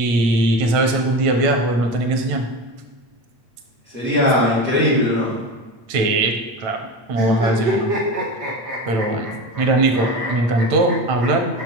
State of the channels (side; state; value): left; late; 8.9 ms